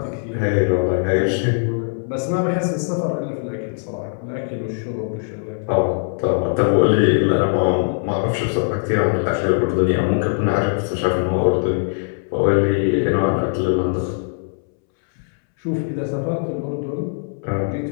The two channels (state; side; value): silent; right; 65 dB below the other